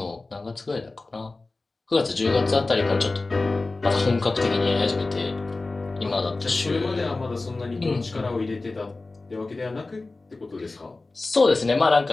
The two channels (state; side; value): quieter; right; 3.4 dB